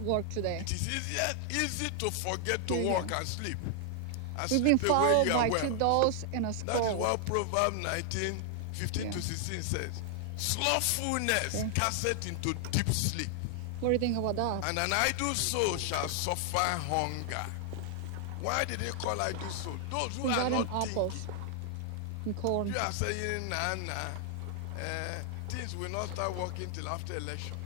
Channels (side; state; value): both; different; correlation 0.00